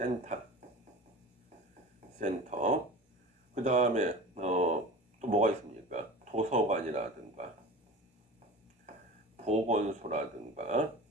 그 다음에 또 뭐가 있습니까? 도서관이라든가 보건소라든가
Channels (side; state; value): both; normal; correlation 0.34